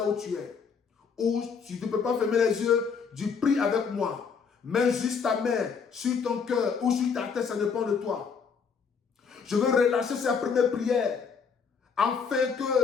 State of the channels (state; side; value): quieter; right; 5.9 dB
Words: où tu es. Ou si tu ne peux pas fermer les yeux, tu pries avec moi. Mets juste ta main sur ton cœur ou sur ta tête, ça dépend de toi. Je veux relâcher cette première prière afin